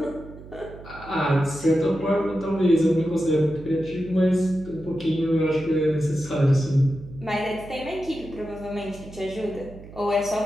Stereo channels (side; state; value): right; noise; hum, 17 dB below the sound